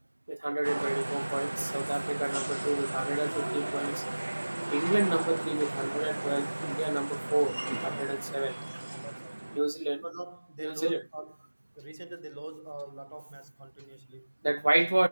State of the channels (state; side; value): inverted; both; correlation -1.00